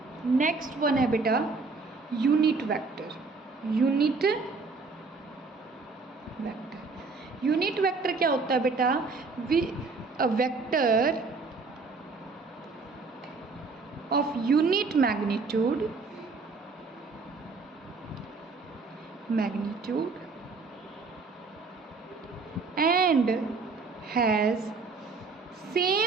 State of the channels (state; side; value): quieter; left; 4.2 dB